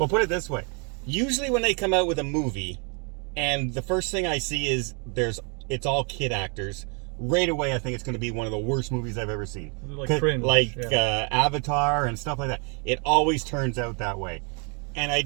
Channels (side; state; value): left; quieter; 36.4 dB